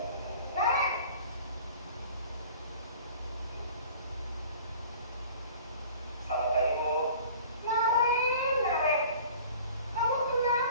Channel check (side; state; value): both; inverted; correlation -0.46